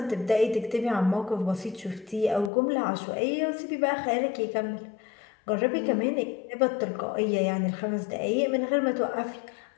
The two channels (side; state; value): right; drops out; at 2.5 s